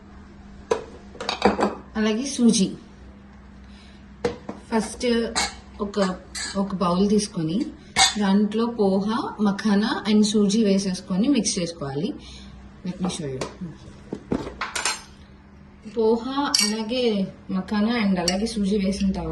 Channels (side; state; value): both; identical; correlation 1.00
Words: అలాగే సూజీ. ఫస్ట్ ఒక బౌల్ తీసుకొని దాంట్లో పోహా, మఖానా అండ్ సూజీ వేసేసుకొని మిక్స్ చేసుకోవాలి. Let me show you. Poha అలాగే మఖానా అండ్ అలాగే సూజీ వేసిన